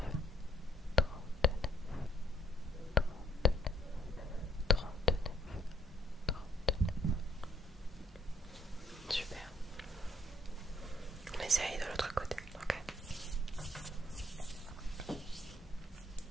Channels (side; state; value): both; normal; correlation 0.64